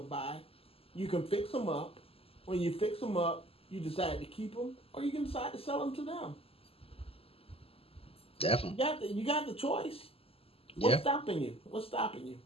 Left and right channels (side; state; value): right; late; 0.28 ms